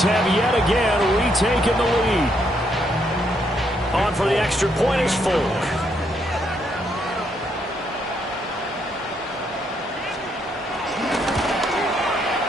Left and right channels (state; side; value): normal; both; correlation 0.74